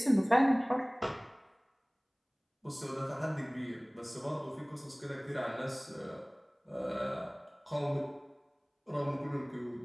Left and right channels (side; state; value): both; identical; correlation 1.00